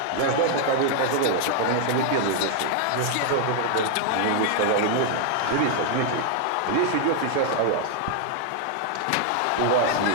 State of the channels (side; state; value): both; different; correlation 0.00